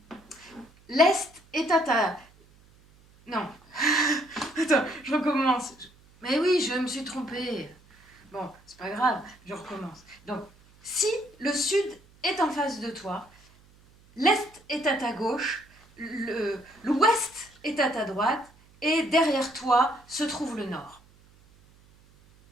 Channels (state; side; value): noise; right; hum, 28 dB below the sound